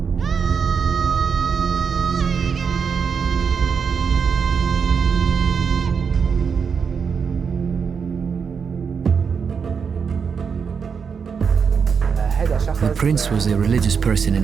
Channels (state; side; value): quieter; left; 6.2 dB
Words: The prince was a religious person